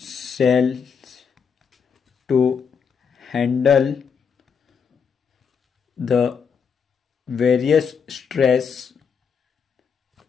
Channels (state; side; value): quieter; right; 6.4 dB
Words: to handle the various stress